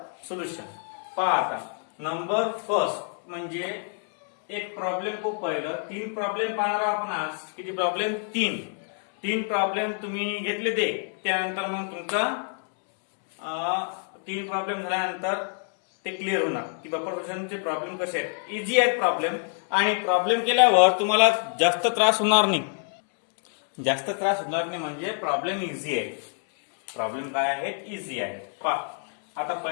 solution. पहा आता नंबर फर्स्ट म्हणजे एक प्रॉब्लेम को पहिलं. तीन प्रॉब्लेम पाहणार आपण आज. किती प्रॉब्लेम? तीन प्रॉब्लेम तुम्ही घेतले ते. त्यानंतर मग तुमचा तीन प्रॉब्लेम झाल्यानंतर ते क्लिअर होणार की बफर सोल्युशनचे प्रॉब्लेम कसे आहेत. इझी आहेत प्रॉब्लेम आणि प्रॉब्लेम केल्यावर तुम्हाला जास्त त्रास होणार नाही. जास्त त्रास होणार नाही म्हणजे प्रॉब्लेम इझी आहे. प्रॉब्लेम काय आहेत? इझी आहे. पहा आता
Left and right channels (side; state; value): right; silent; 58 dB below the other